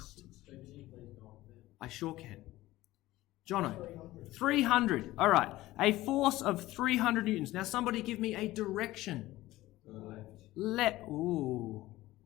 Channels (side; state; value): right; quieter; 17.1 dB